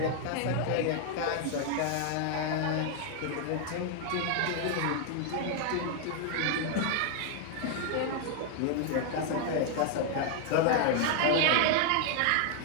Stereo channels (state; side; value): different; both; correlation 0.00